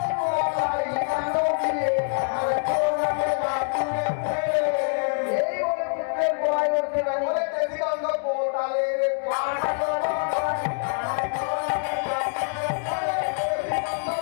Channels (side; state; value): right; silent; 60 dB below the other